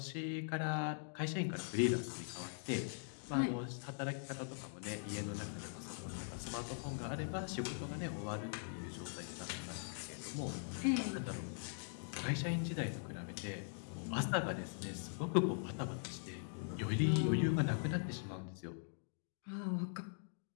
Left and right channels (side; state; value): right; silent; digital silence